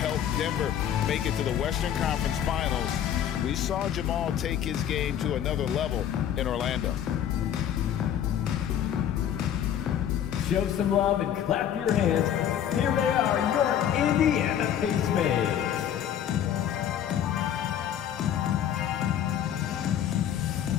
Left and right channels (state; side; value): quieter; right; 9.9 dB